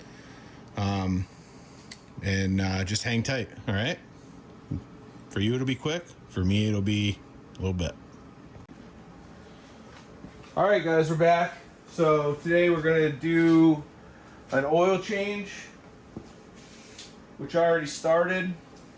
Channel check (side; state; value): both; identical; correlation 1.00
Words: And just hang tight, all right? For you, it'll be quick. For me, it'll be a little bit. All right, guys, we're back. So today we're going to do an oil change, which I already started.